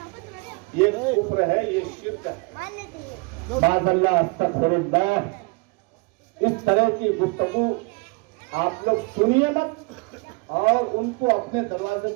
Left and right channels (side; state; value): left; quieter; 29.6 dB